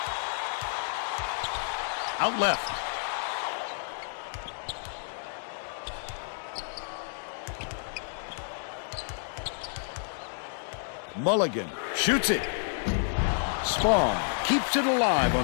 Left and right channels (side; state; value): right; silent; digital silence